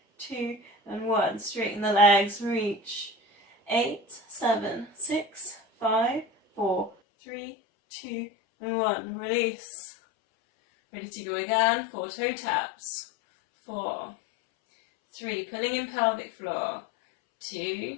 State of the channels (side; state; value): right; drops out; at 7.0 s